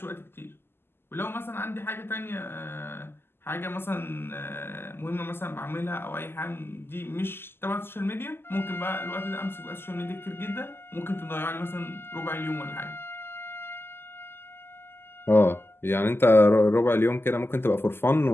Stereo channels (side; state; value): right; late; 0.11 ms